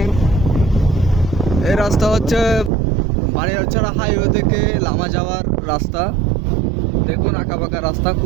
এই রাস্তা হচ্ছে বানিয়ারছড়া হাইওয়ে থেকে লামা যাওয়ার রাস্তা। দেখুন আঁকাবাঁকা রাস্তা,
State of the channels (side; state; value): left; drops out; at 2.7 s